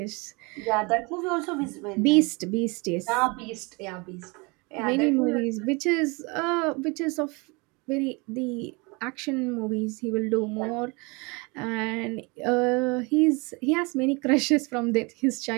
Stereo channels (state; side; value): quieter; left; 28.5 dB